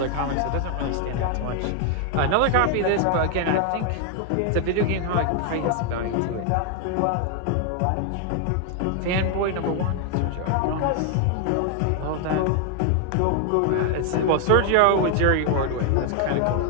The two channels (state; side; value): different; both; correlation 0.00